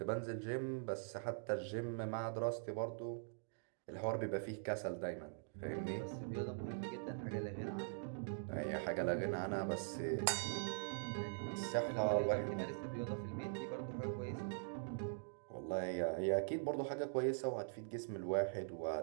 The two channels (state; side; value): silent; left; digital silence